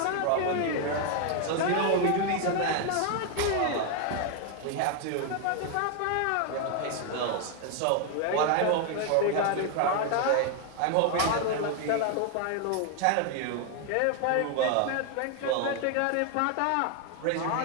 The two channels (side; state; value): both; different; correlation 0.01